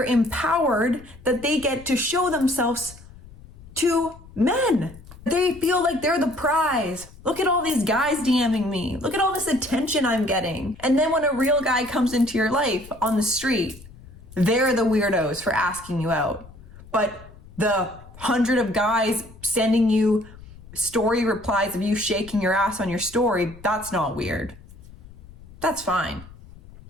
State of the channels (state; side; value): noise; left; rumble, 20 dB below the sound